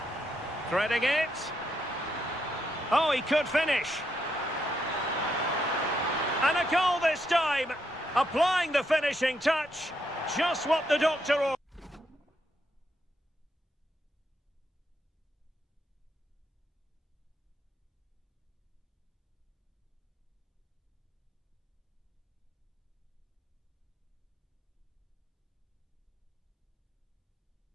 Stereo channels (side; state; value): both; normal; correlation 0.79